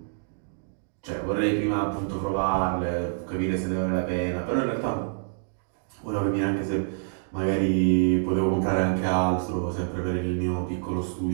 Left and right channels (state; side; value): silent; left; digital silence